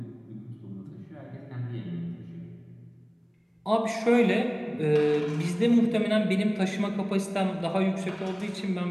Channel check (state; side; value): identical; both; correlation 1.00